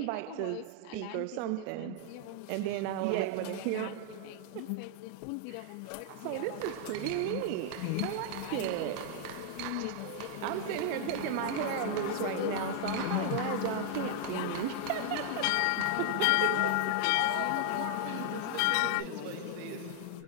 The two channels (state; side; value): different; both; correlation 0.00